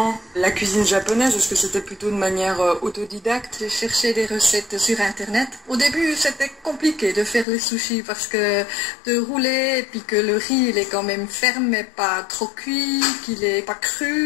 la cuisine japonaise? Est-ce que c'était plutôt de manière autodidacte? J'ai cherché des recettes sur internet. Au début, c'était compliqué de faire les sushis parce que de rouler et puis que le riz il est quand même ferme mais pas trop cuit, qu'il est pas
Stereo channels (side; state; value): right; drops out; at 7.5 s